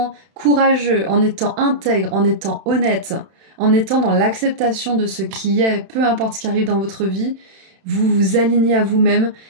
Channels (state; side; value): late; left; 31 ms